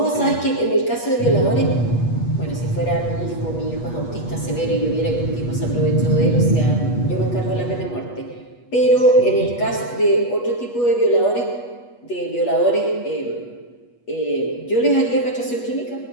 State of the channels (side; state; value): right; late; 8.3 ms